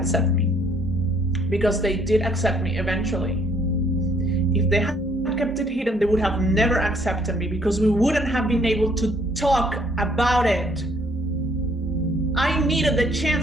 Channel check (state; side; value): normal; both; correlation 0.64